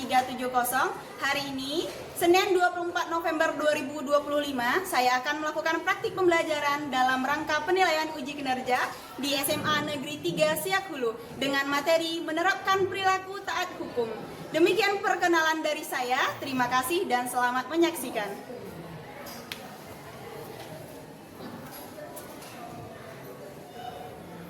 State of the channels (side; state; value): both; identical; correlation 1.00